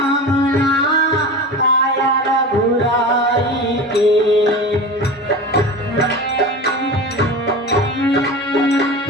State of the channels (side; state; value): both; normal; correlation 0.30